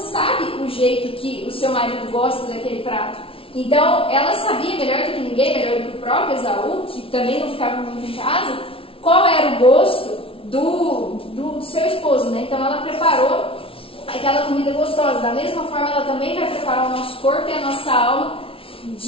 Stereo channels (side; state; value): right; late; 0.26 ms